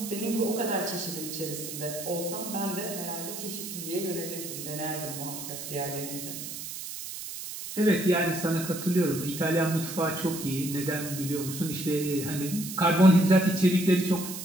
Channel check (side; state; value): right; noise; hiss, 8 dB below the sound